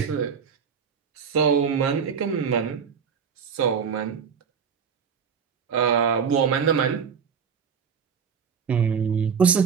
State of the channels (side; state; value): left; quieter; 6.7 dB